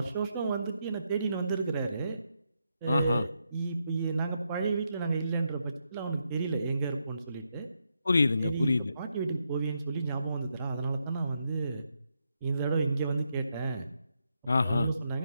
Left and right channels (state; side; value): inverted; both; correlation -0.81